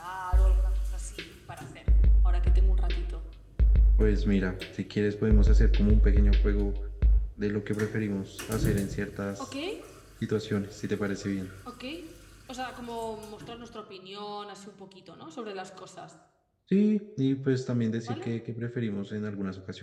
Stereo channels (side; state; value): both; identical; correlation 1.00